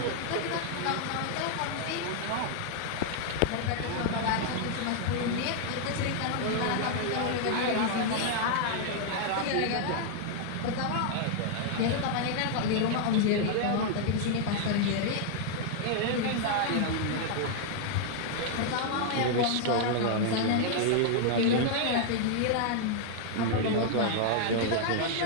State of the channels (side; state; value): both; different; correlation 0.00